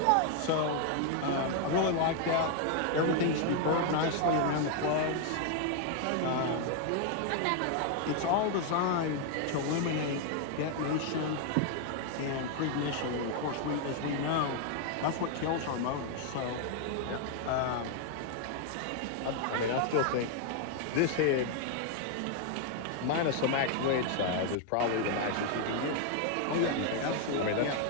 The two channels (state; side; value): different; both; correlation 0.00